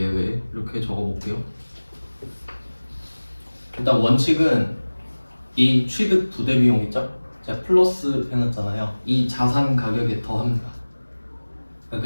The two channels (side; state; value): both; inverted; correlation -1.00